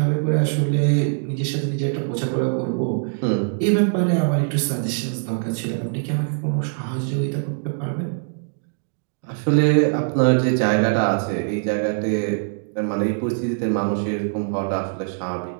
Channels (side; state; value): left; silent; digital silence